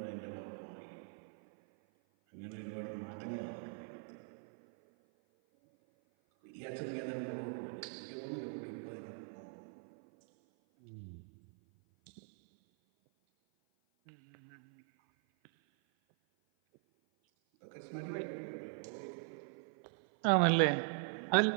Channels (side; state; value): left; silent; 50 dB below the other